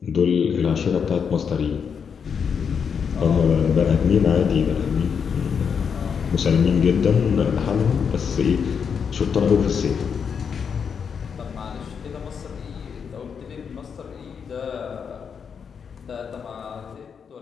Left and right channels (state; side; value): quieter; right; 6.7 dB